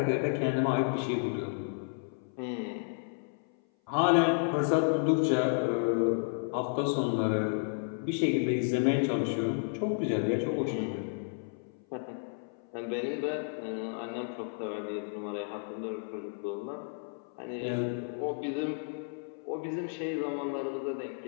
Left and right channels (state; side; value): silent; right; 56 dB below the other